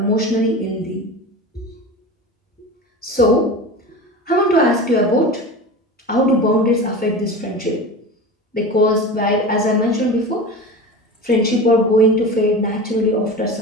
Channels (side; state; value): both; normal; correlation 0.30